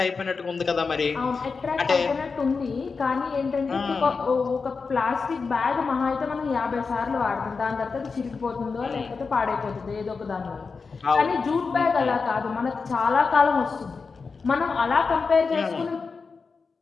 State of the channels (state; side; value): quieter; right; 4.8 dB